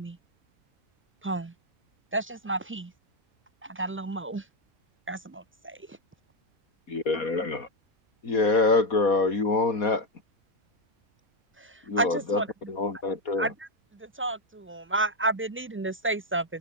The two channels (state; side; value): normal; both; correlation 0.03